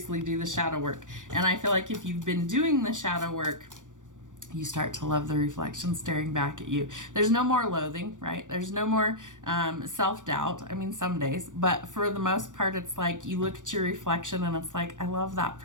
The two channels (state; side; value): late; left; 0.87 ms